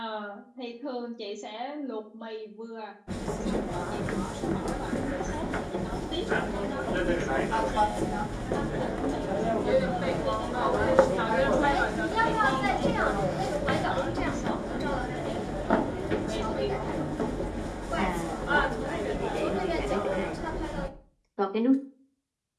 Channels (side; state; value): both; identical; correlation 1.00